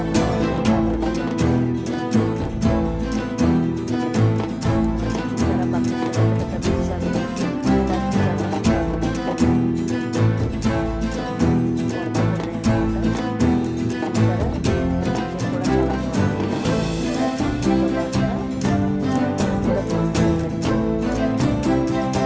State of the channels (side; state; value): both; identical; correlation 1.00